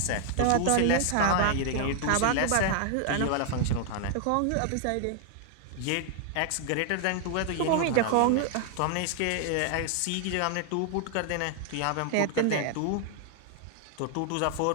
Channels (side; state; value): both; different; correlation 0.00